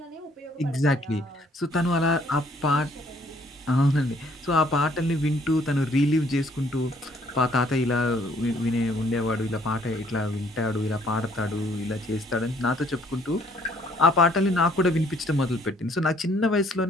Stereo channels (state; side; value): normal; both; correlation 0.62